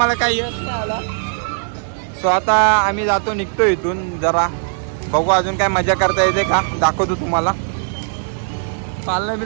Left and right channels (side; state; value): left; silent; 67 dB below the other